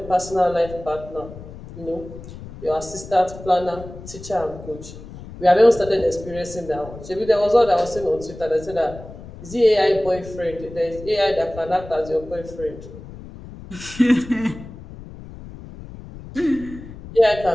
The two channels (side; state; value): left; noise; rumble, 15 dB below the sound